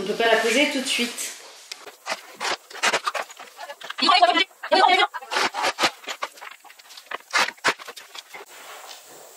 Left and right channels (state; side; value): identical; both; correlation 1.00